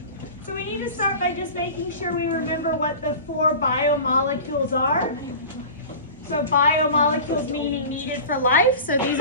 So we need to start by just making sure we remember what the 4 biomolecules are. So biomolecules meaning needed for life. So these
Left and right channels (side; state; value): both; inverted; correlation -0.35